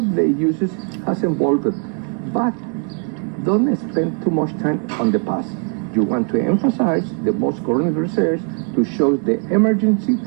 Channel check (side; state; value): left; quieter; 39.0 dB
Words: uses has evolved, but don't spend too much time on the past. You want to emphasize the most current research to show the emergency